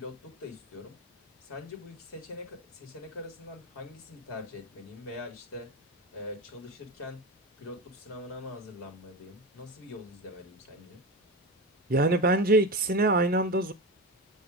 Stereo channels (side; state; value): both; normal; correlation 0.22